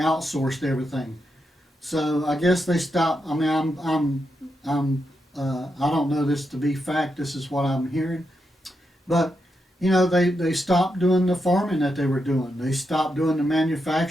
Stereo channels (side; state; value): both; normal; correlation 0.85